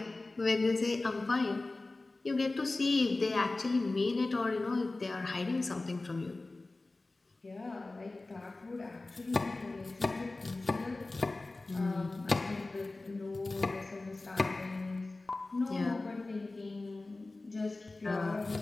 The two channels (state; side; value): quieter; right; 3.2 dB